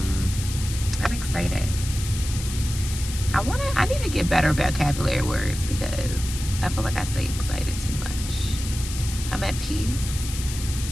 excited. I need to get better vocabulary words because I feel like I say excited too much. I'm at peace.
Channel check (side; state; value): left; noise; hiss, 9 dB below the sound